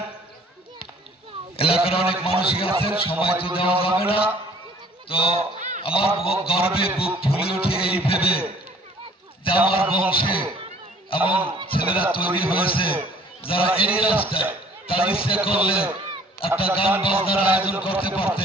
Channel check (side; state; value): both; normal; correlation 0.55